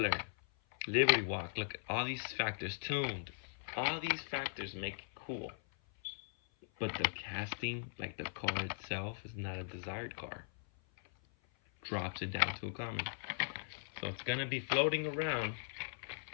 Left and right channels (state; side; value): silent; right; 52 dB below the other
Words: Liberty Walk, look at all these factors. Tuned, all these factors make it cool, but the casting, like the car itself, is not a desired car. Drops it down to a common, so it's gonna be floating around.